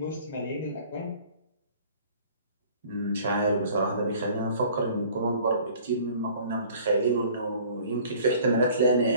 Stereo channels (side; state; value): both; inverted; correlation -0.51